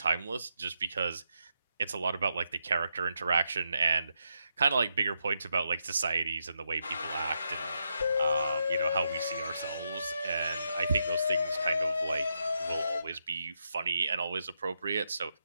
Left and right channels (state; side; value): inverted; both; correlation -0.82